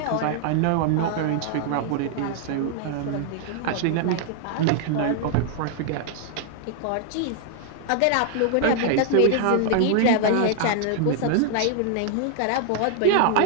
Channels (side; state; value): both; different; correlation 0.00